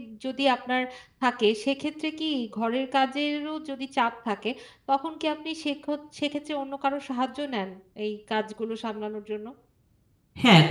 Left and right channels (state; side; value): identical; both; correlation 1.00